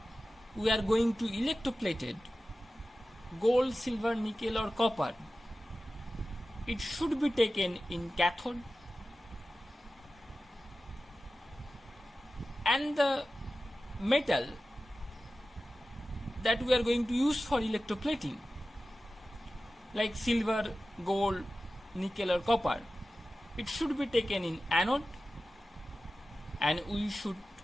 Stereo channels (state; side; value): normal; both; correlation 0.95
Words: we are going to electroplated gold, silver, nickel or copper. It should be taken in cathode, and the metal that we are going to use for electroplating, like silver, gold, nickel or copper, it should be taken in anode, and we should